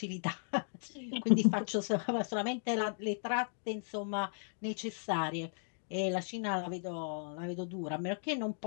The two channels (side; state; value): right; silent; digital silence